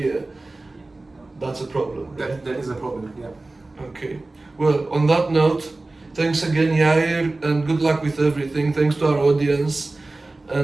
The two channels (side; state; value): left; quieter; 3.1 dB